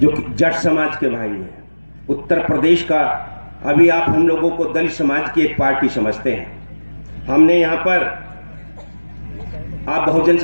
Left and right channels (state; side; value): inverted; both; correlation -1.00